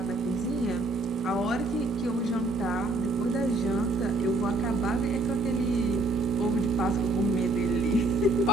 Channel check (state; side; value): normal; both; correlation 0.63